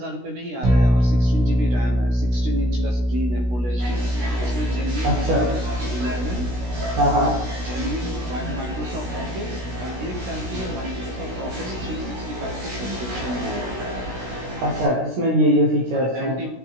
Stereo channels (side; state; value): left; late; 16 ms